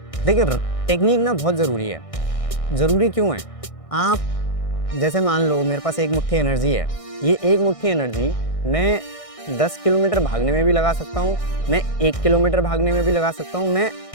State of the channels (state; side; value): late; right; 1.6 ms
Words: देखिए टेक्निक ना बहुत ज़रूरी है। ज़रूरी क्यों है? आप जैसे मान लो मेरे पास एक मुट्ठी एनर्जी है। ये एक मुट्ठी एनर्जी मैं 10 किलोमीटर भागने में भी लगा सकता हूँ, मैं 1 किलोमीटर भागने में भी लगा सकता हूँ, मैं